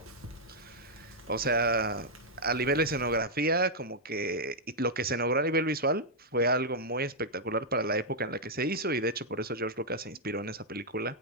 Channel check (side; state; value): both; normal; correlation -0.05